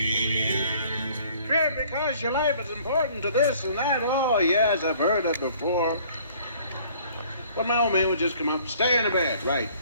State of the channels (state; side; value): inverted; both; correlation -0.56